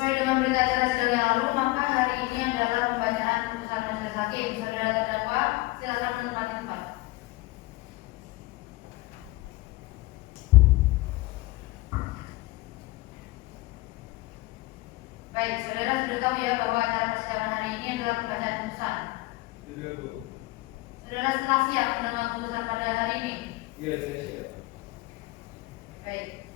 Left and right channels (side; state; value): right; quieter; 20.6 dB